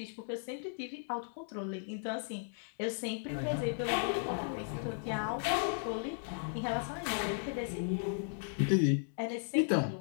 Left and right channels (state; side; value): silent; right; digital silence